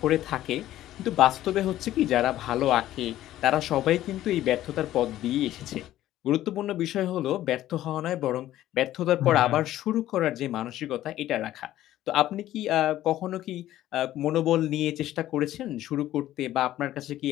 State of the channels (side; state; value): right; quieter; 13.7 dB